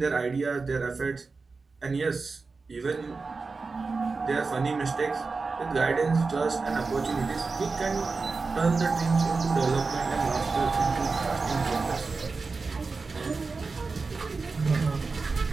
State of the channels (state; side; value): quieter; left; 4.2 dB